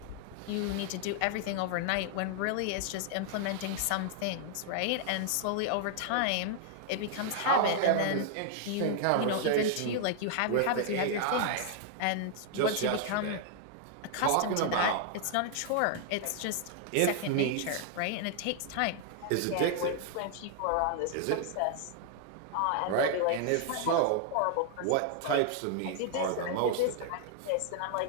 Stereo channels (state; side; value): different; both; correlation 0.00